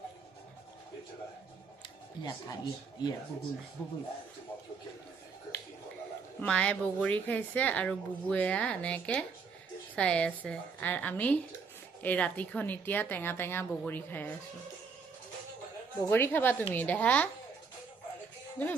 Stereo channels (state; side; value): quieter; left; 5.2 dB